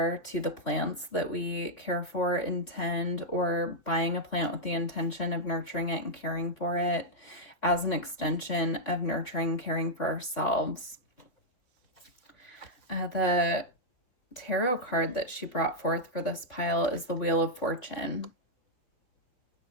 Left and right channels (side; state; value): right; late; 3.9 ms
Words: to the plants that we care for, intend, or buying a plant with the intention of nurturing it and caring for it as an extension of nurturing, caring for ourselves. The tarot card that she brought forth for this pile is the Wheel of Fortune.